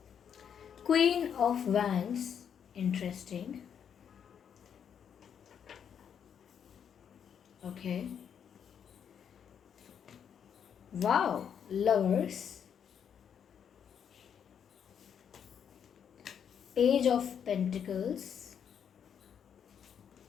Queen of wands, interesting. Okay, wow, lovers, page of pentacles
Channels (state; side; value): quieter; right; 8.0 dB